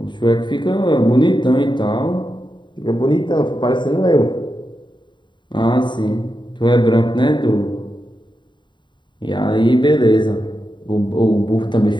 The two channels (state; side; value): late; right; 0.23 ms